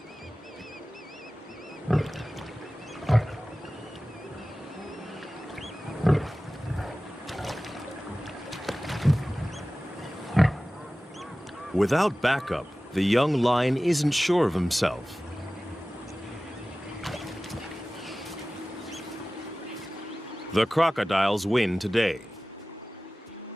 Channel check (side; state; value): both; normal; correlation 0.97